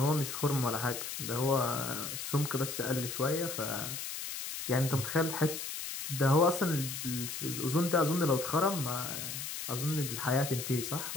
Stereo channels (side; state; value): left; noise; hiss, 6 dB below the sound